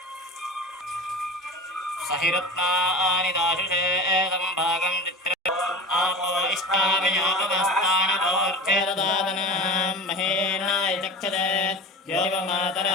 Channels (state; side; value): normal; both; correlation 0.31